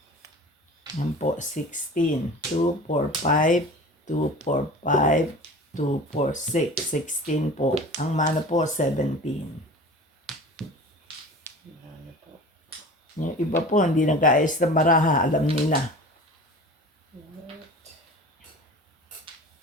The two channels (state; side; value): normal; both; correlation 0.38